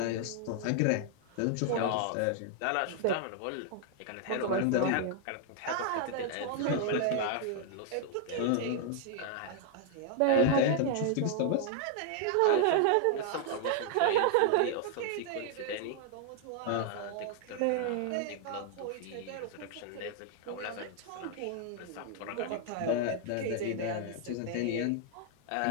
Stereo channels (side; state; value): both; different; correlation 0.00